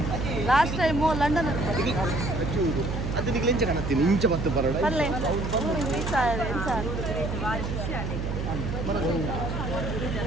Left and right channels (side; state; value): right; noise; hum, 3 dB below the sound